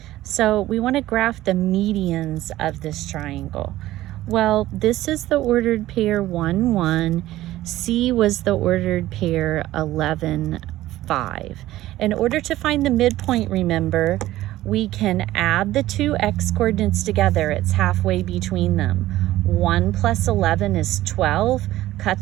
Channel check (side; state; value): left; quieter; 15.4 dB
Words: So we want to graph the medians of this triangle. Well, this is the ordered pair 1, 1. C was the ordered pair 11, 5. In order to find the midpoint, remember, we can add the 2 x coordinates together. It's halfway between them. 1 plus 11 is 12.